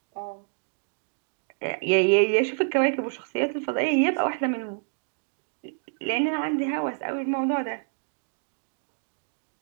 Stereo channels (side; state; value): left; silent; 58 dB below the other